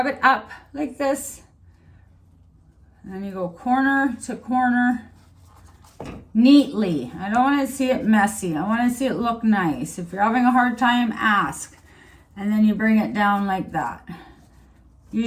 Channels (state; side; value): identical; both; correlation 1.00